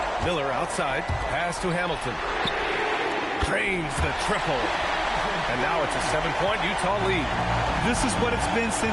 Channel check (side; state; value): both; identical; correlation 1.00